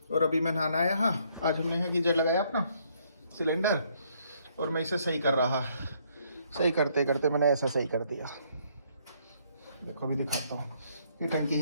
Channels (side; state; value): both; inverted; correlation -0.68